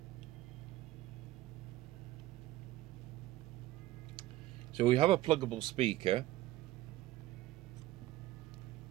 So we have a pluggable speaker.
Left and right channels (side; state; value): left; quieter; 15.7 dB